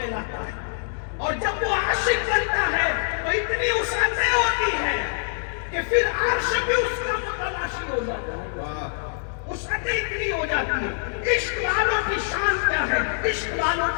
ہے. اور جب وہ عاشق بنتا ہے تو اتنی وسعتیں ہوتی ہے کہ پھر عرش بھی اس کا متلاشی ہو جاتا ہے. وسعتیں اتنی ہو جاتی ہے. عشق والوں کی شان کیا ہے، عشق والوں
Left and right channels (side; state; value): right; silent; digital silence